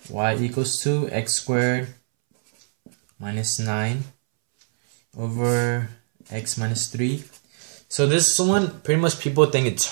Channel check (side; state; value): left; silent; 64 dB below the other